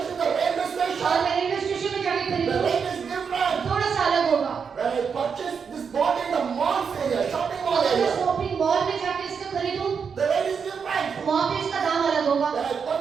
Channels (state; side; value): quieter; left; 6.3 dB